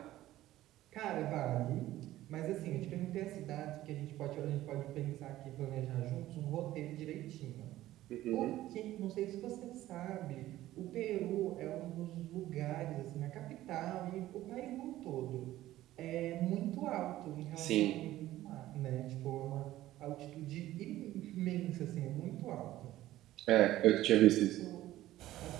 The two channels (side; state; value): left; quieter; 14.9 dB